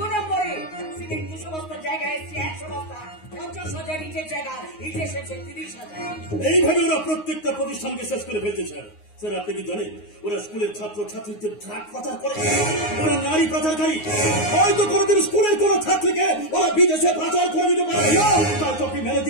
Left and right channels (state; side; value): late; right; 9.6 ms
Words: নম্বরে। সিমেন্ট 200 বস্তা জায়গায় এসছে 100 বস্তা, 50,000 ইটের জায়গা ইট এসেছে 30,000। এইভাবে ওরা প্রত্যেকটা প্রতিষ্ঠানকে শেষ করে ফেলছে স্যার। স্যার আপনি কি জানেন ওরা স্কুলের ছাত্র ছাত্রীদের ড্রাগ পাচার করে, ওরা নারী পাচারকারী। হয়তো কোনোদিন স্কুলের কোন ছাত্রীকে ওরা বিদেশে পাচার করে দিতে পারে। তাই তো আপনি